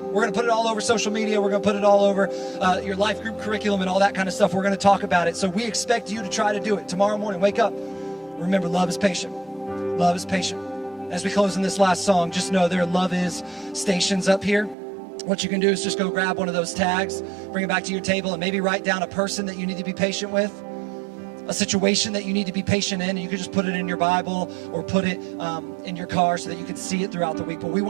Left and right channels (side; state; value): left; drops out; at 14.8 s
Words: We're going to put it all over social media. We're going to put it all over your life group curriculum and all that kind of stuff. We're going to talk about it. So we expect you to try to do it. Tomorrow morning, wake up. Remember, love is patient. Love is patient. As we close in this last song, just know there are Love Is stations up here. What you can do is just go grab one of those tags, bring it back to your table, and maybe write down a person that you need to be patient with, a situation that you need to be patient in, and you can just put it in your Bible or put it in your car so that you can see it throughout the week. But we